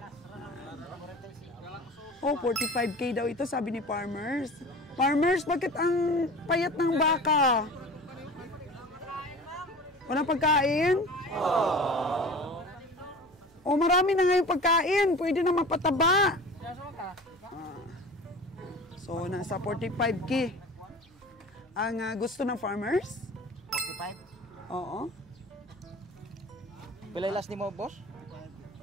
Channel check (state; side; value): normal; both; correlation 0.38